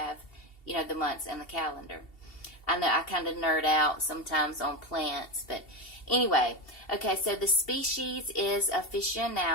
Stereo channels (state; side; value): late; right; 2.7 ms